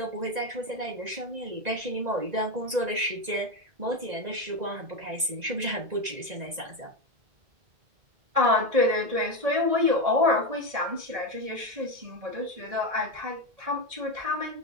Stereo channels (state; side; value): late; left; 1.9 ms